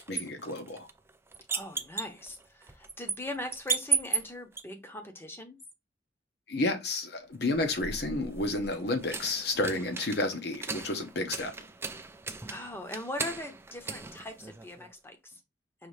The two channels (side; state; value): both; normal; correlation 0.22